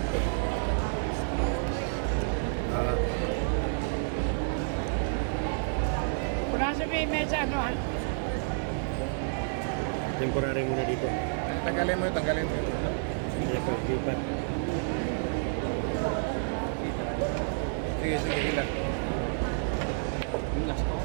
Ah, Pulasan mo yung medya ano ha? temporary muna dito. Tanggalin mo yun, tanggalin mo yun. Lipat. Sige, sige, ilan.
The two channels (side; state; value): left; silent; digital silence